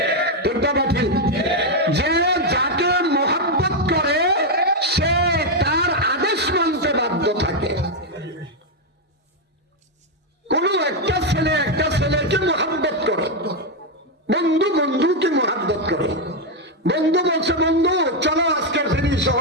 ঠিক না ঠিক? যে যাকে মহব্বত করে সে তার আদেশ মানতে বাধ্য থাকে। কোন একটা ছেলেকে মহব্বত করে, বন্ধু বন্ধুকে মহব্বত করে। বন্ধু বলছে বন্ধু চলো আজকে ফিরি,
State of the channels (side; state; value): both; normal; correlation 0.03